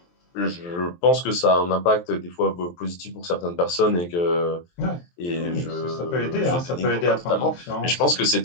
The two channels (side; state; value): right; late; 23 ms